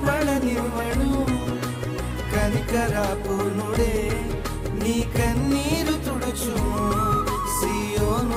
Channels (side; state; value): both; identical; correlation 1.00